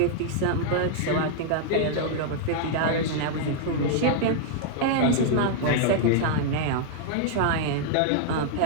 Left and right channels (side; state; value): both; different; correlation 0.00